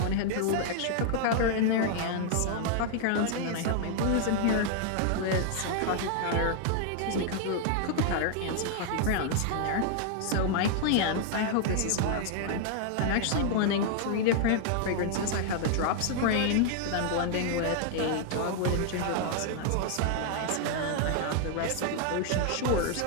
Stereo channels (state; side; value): different; both; correlation 0.00